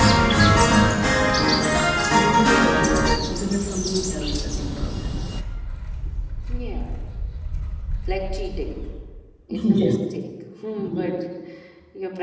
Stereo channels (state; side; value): identical; both; correlation 1.00